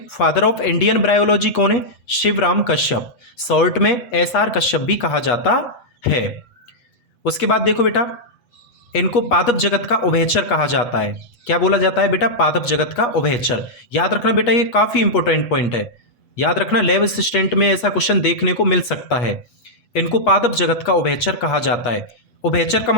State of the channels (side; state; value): right; late; 8.3 ms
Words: फादर ऑफ इंडियन ब्रायोलॉजी कौन है? शिवराम कश्यप, शॉर्ट में एसआर कश्यप भी कहा जाता है। उसके बाद देखो बेटा, इनको पादप जगत का उभयचर कहा जाता है। क्या बोला जाता है बेटा? पादप जगत का उभयचर। याद रखना बेटा, ये काफी इंपॉर्टेंट पॉइंट है। याद रखना, लैब असिस्टेंट में ऐसा क्वेश्चन देखने को मिल सकता है। इनको पादप जगत का उभयचर कहा जाता है। उभयचर का